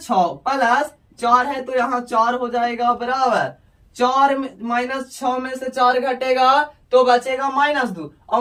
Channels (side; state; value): both; identical; correlation 1.00